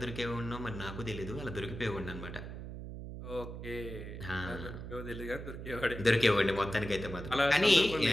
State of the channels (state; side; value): noise; right; hum, 9 dB below the sound